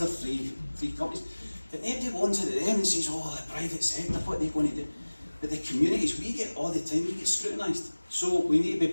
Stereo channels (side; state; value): both; inverted; correlation -1.00